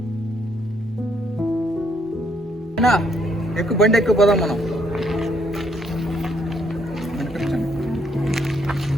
ఎక్కువ బండి ఎక్కువ పోదాం మనం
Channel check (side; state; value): both; normal; correlation 0.71